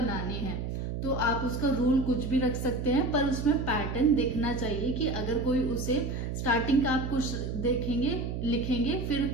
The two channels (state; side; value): noise; right; hum, 4 dB below the sound